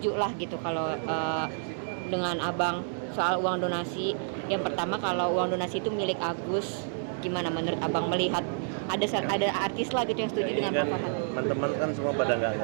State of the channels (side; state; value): left; silent; 58 dB below the other